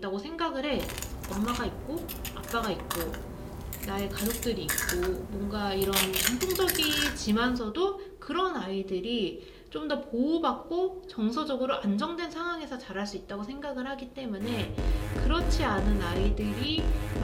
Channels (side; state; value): both; identical; correlation 1.00